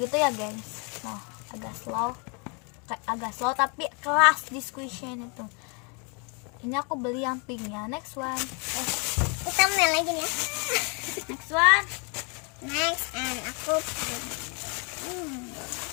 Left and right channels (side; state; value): right; quieter; 34.5 dB